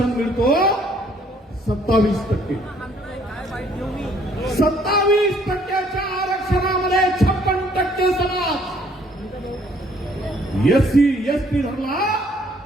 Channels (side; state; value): both; normal; correlation 0.62